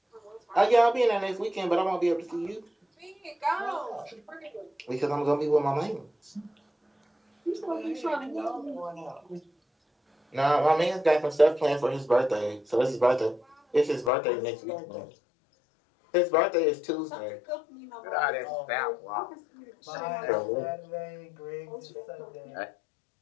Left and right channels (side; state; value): right; drops out; at 14.1 s